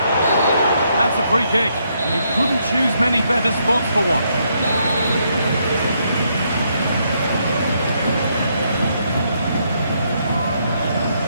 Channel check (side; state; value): both; inverted; correlation -0.75